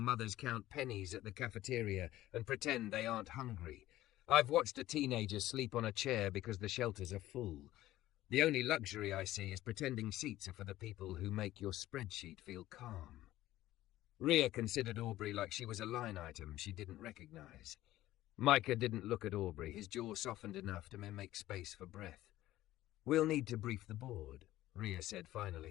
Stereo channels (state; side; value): quieter; right; 15.2 dB